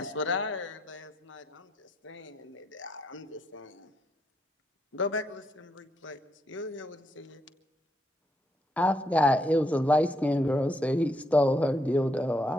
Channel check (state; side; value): normal; both; correlation 0.77